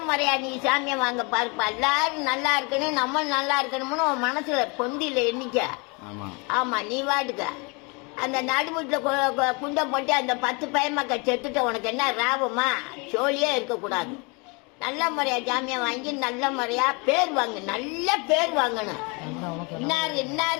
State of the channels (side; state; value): right; quieter; 30.6 dB